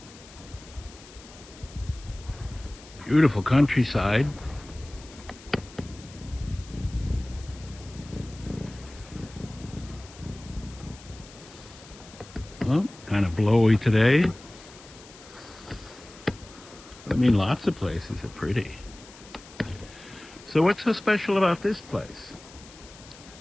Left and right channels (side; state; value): left; noise; hiss, 20 dB below the sound